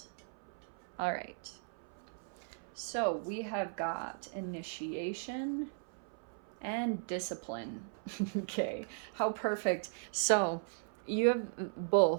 All right. So we have got initiation and discipline. Okay, how perfect. So you have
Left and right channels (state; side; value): silent; left; 53 dB below the other